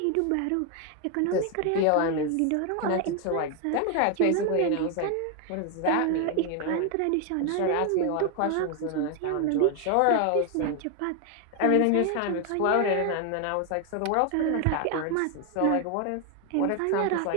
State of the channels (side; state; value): both; different; correlation 0.01